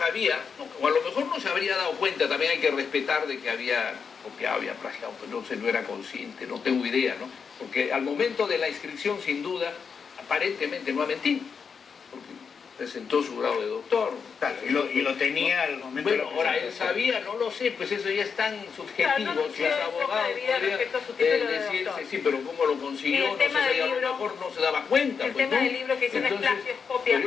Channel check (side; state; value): right; quieter; 6.0 dB